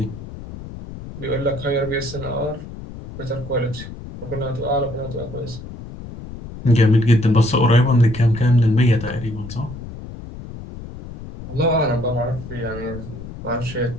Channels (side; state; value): left; noise; rumble, 12 dB below the sound